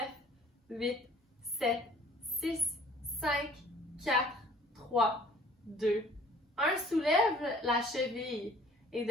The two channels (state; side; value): normal; both; correlation 0.53